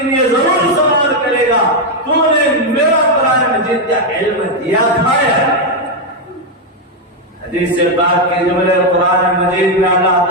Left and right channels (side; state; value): both; normal; correlation 0.03